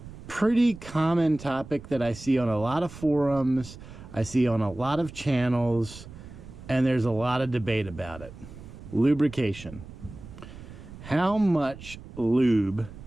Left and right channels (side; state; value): right; noise; rumble, 15 dB below the sound